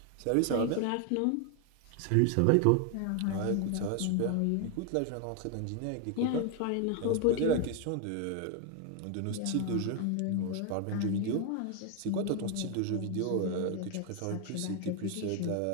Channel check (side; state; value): both; different; correlation 0.01